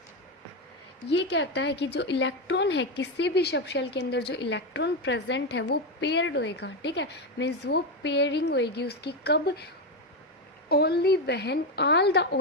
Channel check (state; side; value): normal; both; correlation 0.11